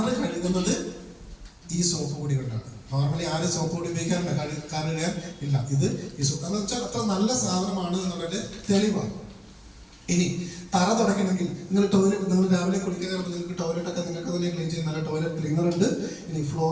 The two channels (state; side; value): identical; both; correlation 1.00